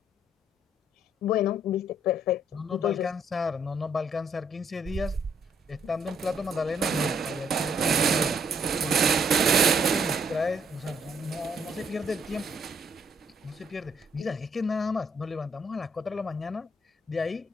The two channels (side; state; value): both; normal; correlation 0.69